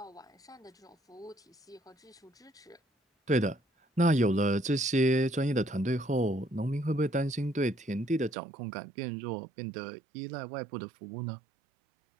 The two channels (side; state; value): left; drops out; at 8.3 s